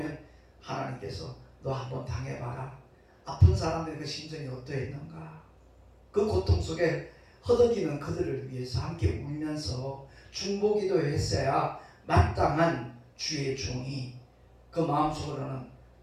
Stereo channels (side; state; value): both; identical; correlation 1.00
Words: 하나님께서 너 한번 당해봐라, 아픈 사람들의 그 심정이 어떠했는가, 그 고통 속에 허덕이는 그들을 위해서 함께 울면서 중보기도 했어야 마땅한 주의 종이 그 마음속으로는